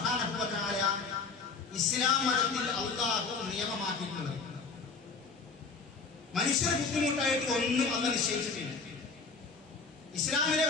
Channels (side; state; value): right; quieter; 4.6 dB